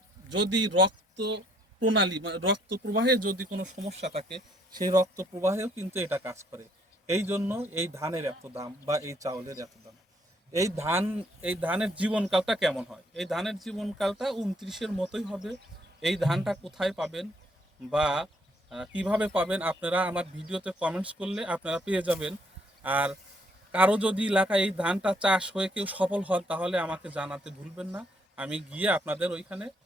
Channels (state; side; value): normal; both; correlation 0.67